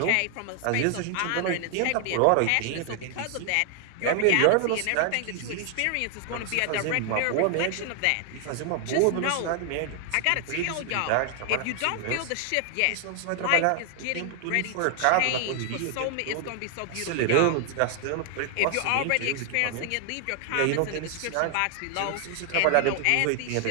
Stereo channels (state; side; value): different; both; correlation 0.00